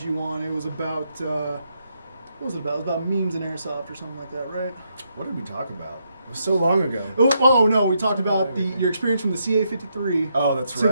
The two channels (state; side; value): inverted; both; correlation -0.79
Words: you on, it was about, what was it about? It was about memes and airsoft or something like that, right? What did we talk about? It was so long ago. Oh no, we talked about your experience from the CA-53 Oh, that's to